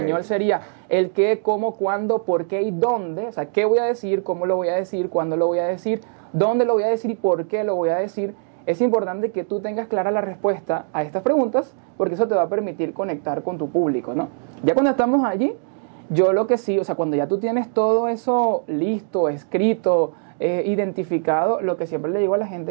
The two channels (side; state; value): left; silent; digital silence